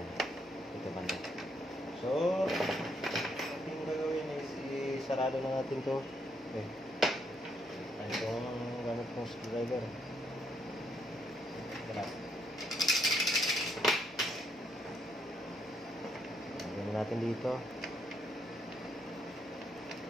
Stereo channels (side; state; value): both; normal; correlation 0.74